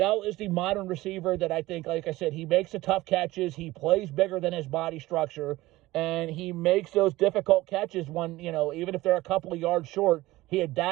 is the modern receiver that I think, like I said, he makes the tough catches, he plays bigger than his body structure, and he makes those difficult catches when, even if they're a couple of yards short, he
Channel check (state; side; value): quieter; left; 18.3 dB